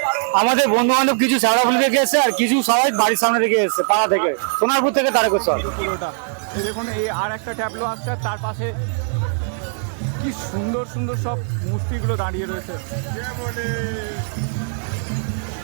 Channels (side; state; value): left; silent; 65 dB below the other